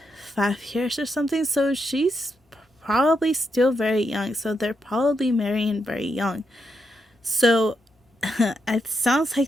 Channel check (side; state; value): both; normal; correlation 0.82